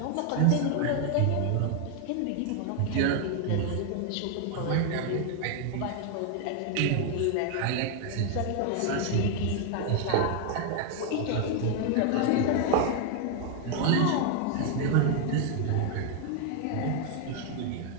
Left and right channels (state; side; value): different; both; correlation 0.00